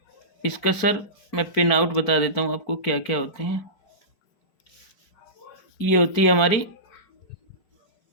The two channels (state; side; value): late; right; 4.5 ms